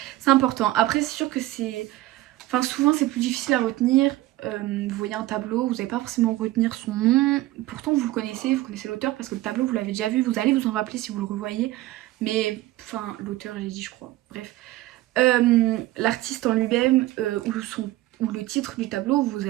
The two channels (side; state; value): left; quieter; 16.9 dB